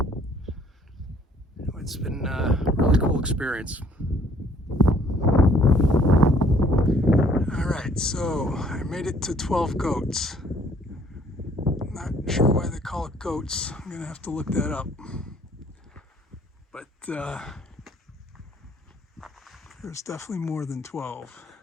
It's been a really cool experience. All right, so I made it to 12 goats. Not sure why they call it goats. I'm gonna have to look that up. But there's definitely more than 12.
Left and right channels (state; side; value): normal; both; correlation 0.61